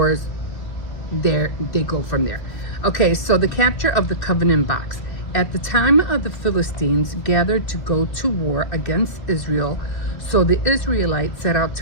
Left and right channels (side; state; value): right; late; 2.6 ms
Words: there they go from there. Okay, so the capture of the covenant box. At the time of the Philistines gathered to go to war against Israel, so the Israelites set out